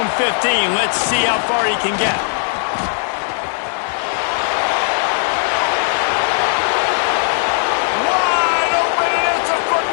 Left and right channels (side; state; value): right; silent; 67 dB below the other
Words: 15, let's see how far he can get. Wide open, and it's a foot